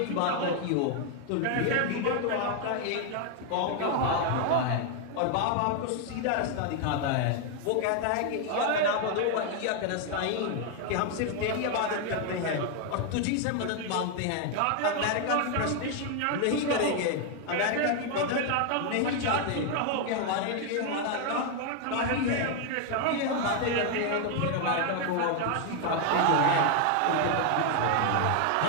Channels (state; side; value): different; both; correlation 0.01